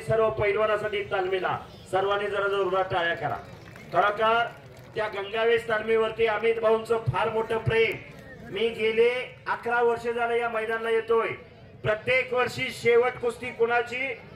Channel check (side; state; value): both; identical; correlation 1.00